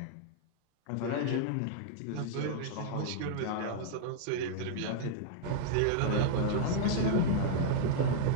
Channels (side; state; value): both; different; correlation -0.01